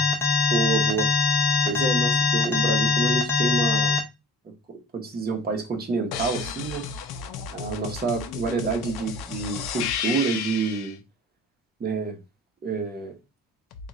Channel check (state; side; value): normal; both; correlation 0.42